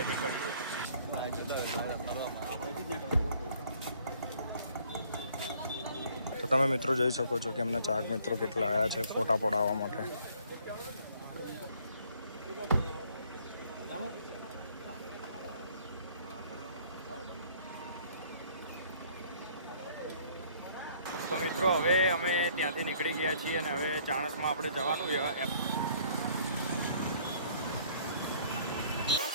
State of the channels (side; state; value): both; inverted; correlation -0.60